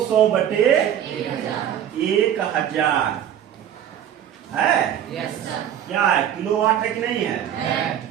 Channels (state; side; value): quieter; left; 10.0 dB